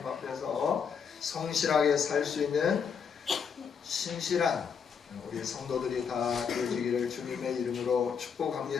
앞에서 성실하게 살 수 있는 신실한 우리 성도들이 다 되어지기를 주님의 이름으로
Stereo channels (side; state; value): right; quieter; 6.6 dB